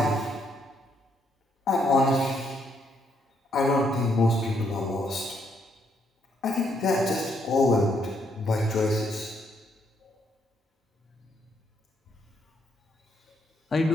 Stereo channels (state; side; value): normal; both; correlation 0.74